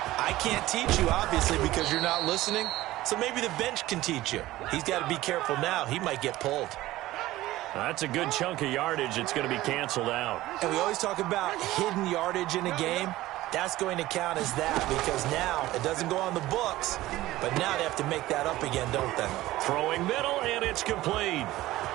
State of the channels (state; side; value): quieter; left; 16.6 dB